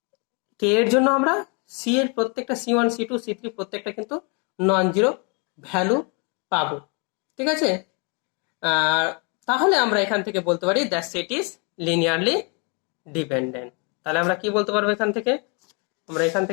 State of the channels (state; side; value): quieter; right; 34.1 dB